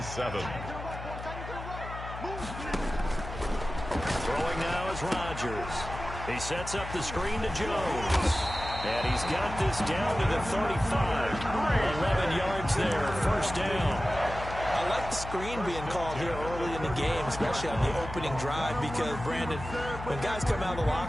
7. Throwing now is Rodgers. He sets up the screen to Jones. And he's got this down to the 35. 11 yards there. 1st down. I like the screen being called here early in the game, especially on the opening drive, because, Brandon, when guys come out of the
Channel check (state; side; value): noise; left; hum, 10 dB below the sound